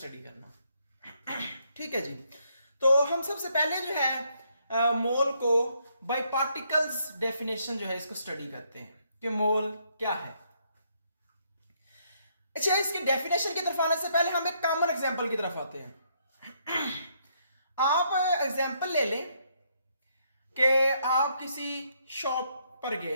करना। ठीक है जी। तो हम सबसे पहले जो है मोल को बाय पार्टिकल्स डेफिनेशन जो है इसको स्टडी करते हैं कि मोल क्या है। अच्छा, इसकी डेफिनेशन की तरफ आने से पहले हम एक कॉमन एग्जांपल की तरफ आते हैं। आप एग्जांपल ले लें कि आप किसी शॉप पर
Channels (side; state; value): both; inverted; correlation -0.72